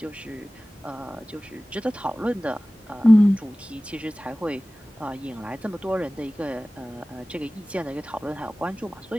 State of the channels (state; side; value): normal; both; correlation 0.98